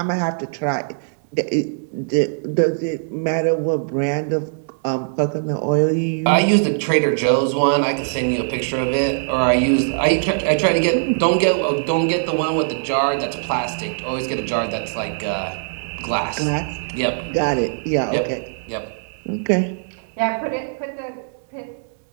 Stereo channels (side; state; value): left; silent; digital silence